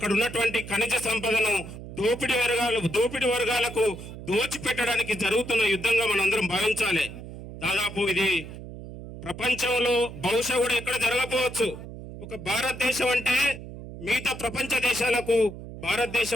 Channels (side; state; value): right; noise; hum, 12 dB below the sound